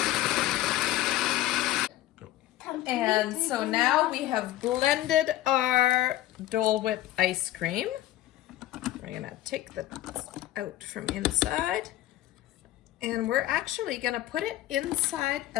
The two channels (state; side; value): quieter; right; 14.7 dB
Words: And so now we have blended our Dole Whip ice cream. We're gonna take the out from inside, and we're actually gonna put it inside